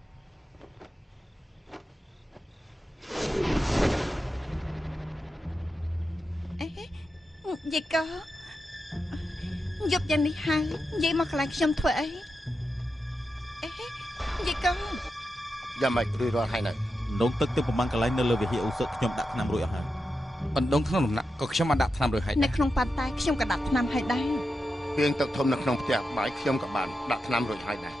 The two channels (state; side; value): normal; both; correlation 0.89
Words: យាយកោយប់យ៉ាងនេះហើយនិយាយមកកន្លែងខ្ញុំធ្វើអីយាយកោយ៉ាងម៉េចរួចរាល់ហើយនៅដងទឹកទៅប្រមាណកន្លែងនៅលើវិហារឧសកខ្ញុំដាក់ថ្នាំរួចអស់ហើយបណ្ដងក្នុងដំណាក់ក៏ខ្ញុំបានដាក់ថ្នាំរួចហើយនៅក្នុងប៉ាន់តែខ្ញុំក៏ដាក់ថ្នាំហើយដែរពីងទឹកធំនៅក្នុងផ្ទះបាយខ្ញុំក៏បានដាក់ថ្នាំរួចហើយដែរ